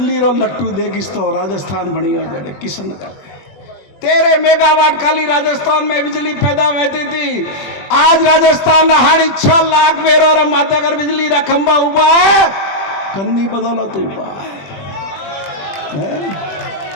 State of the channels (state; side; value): late; right; 21 ms